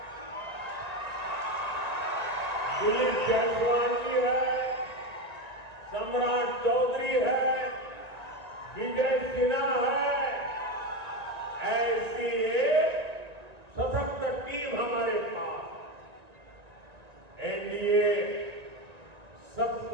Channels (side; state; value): left; late; 1.9 ms